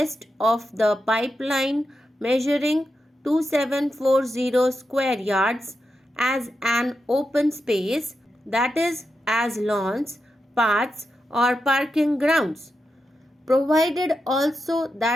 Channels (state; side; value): normal; both; correlation 0.88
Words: of the pipeline measuring 2740 square yards as an open space, that is, as lawns, paths, or parking grounds, provided also